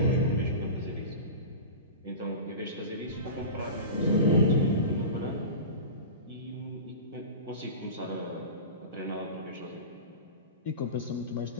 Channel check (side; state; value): both; inverted; correlation -0.30